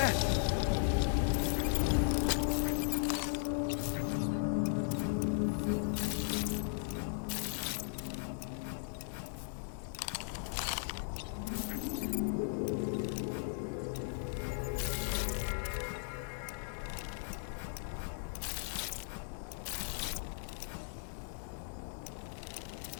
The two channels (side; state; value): right; silent; digital silence